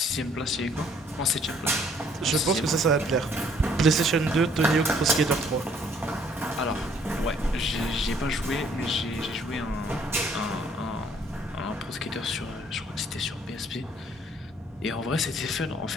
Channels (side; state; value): both; normal; correlation 0.63